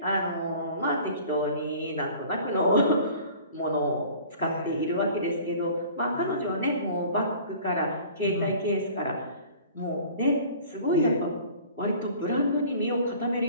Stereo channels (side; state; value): both; inverted; correlation -0.47